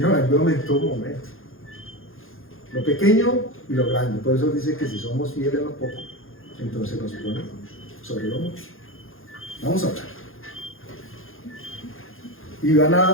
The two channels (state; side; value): late; right; 0.60 ms